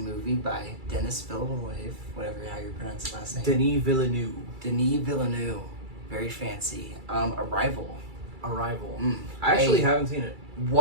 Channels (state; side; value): late; left; 2.3 ms